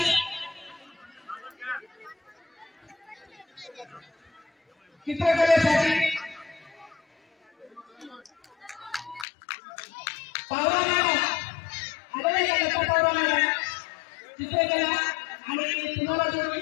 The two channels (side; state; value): right; drops out; at 9.2 s